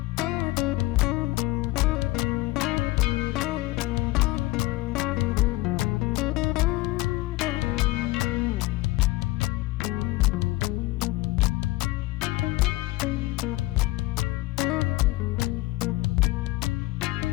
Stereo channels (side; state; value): right; quieter; 19.2 dB